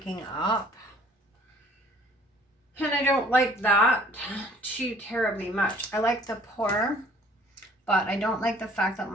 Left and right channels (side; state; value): both; normal; correlation 0.55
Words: up. And I don't like that too terribly much. I like the pour, but I don't like the fact that